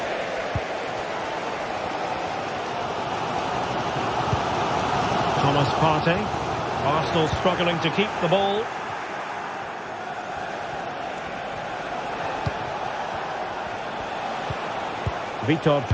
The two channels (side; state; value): both; identical; correlation 1.00